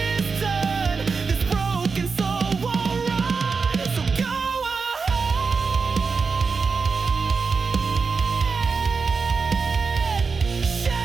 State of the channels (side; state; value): left; quieter; 4.9 dB